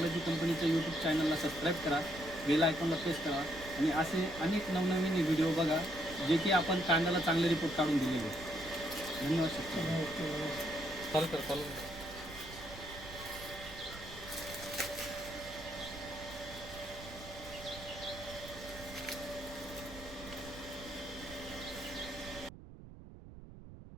कंपनीचं यूट्यूब चॅनलला सबस्क्राईब करा, बेल आयकॉनला प्रेस करा आणि असे अनेक नवनवीन व्हिडिओ बघा जे की आपण कांद्याला चांगले रिपोर्ट काढून दिलेले. धन्यवाद शेतकरी. ओके. चालू कर.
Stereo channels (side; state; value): right; noise; rumble, 15 dB below the sound